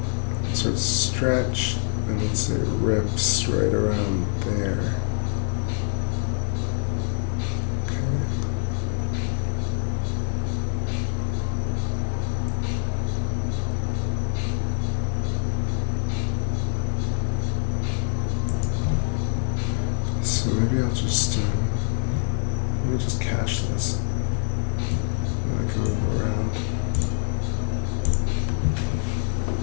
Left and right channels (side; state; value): right; silent; digital silence